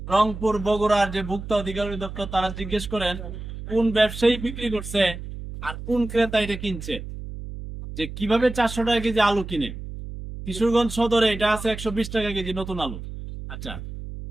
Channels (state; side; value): noise; right; hum, 10 dB below the sound